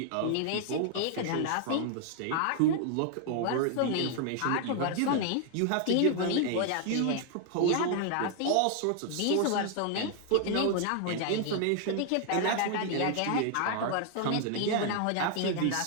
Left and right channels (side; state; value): both; different; correlation 0.00